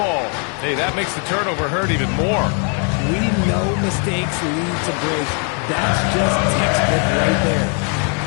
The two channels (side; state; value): right; quieter; 39.9 dB